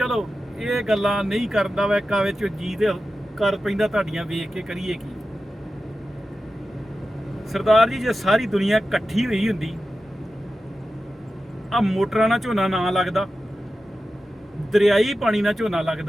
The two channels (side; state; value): both; normal; correlation 0.92